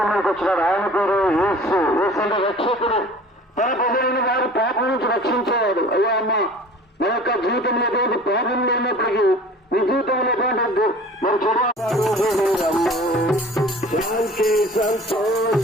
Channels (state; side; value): normal; both; correlation 0.45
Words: వచ్చినాడు. ఆయన పేరు యేసు. యేసు అంటే రక్షకుడు. తన ప్రజలైన వారు పాపం నుంచి రక్షించేవాడు. అయ్యా అమ్మ నా యొక్క జీవితంలో పాపం లేనప్పటికీ నీ జీవితంలో కాదు మరి శాంతి